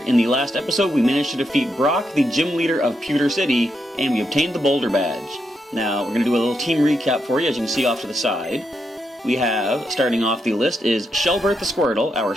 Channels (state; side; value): normal; both; correlation 0.82